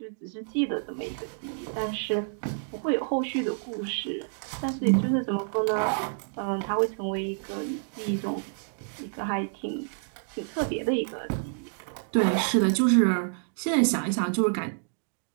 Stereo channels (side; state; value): left; silent; digital silence